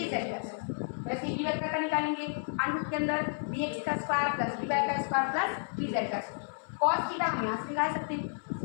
का स्क्वायर। वैसे बी वेक्टर का निकालेंगे, अनुरूप के अंदर bx का स्क्वायर प्लस by का स्क्वायर प्लस bz का स्क्वायर। cos थीटा हम यहाँ से निकाल सकते हैं।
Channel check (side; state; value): right; silent; 57 dB below the other